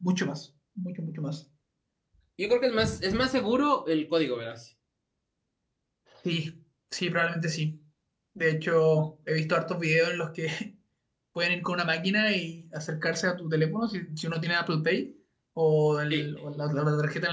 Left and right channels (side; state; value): both; identical; correlation 1.00